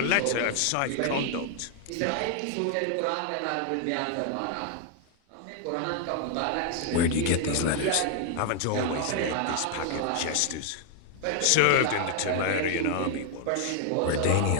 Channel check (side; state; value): both; different; correlation 0.00